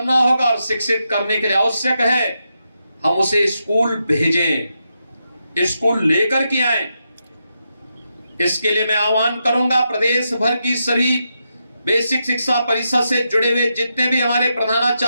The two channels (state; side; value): inverted; both; correlation -0.85